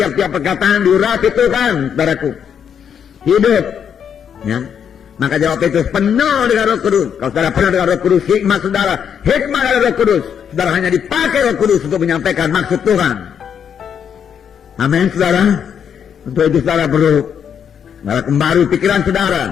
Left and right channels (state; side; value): quieter; right; 8.0 dB